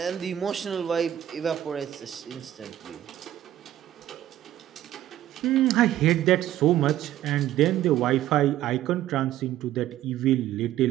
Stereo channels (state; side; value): quieter; left; 12.7 dB